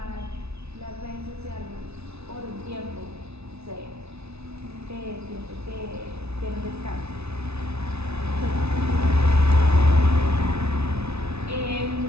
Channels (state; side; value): late; left; 0.80 ms